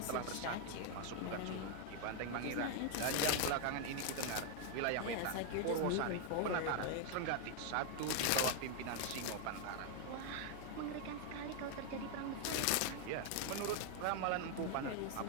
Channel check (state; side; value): different; both; correlation 0.01